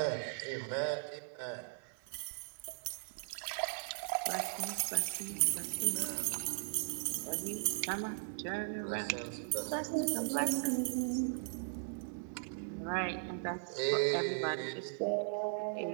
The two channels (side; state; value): left; silent; 52 dB below the other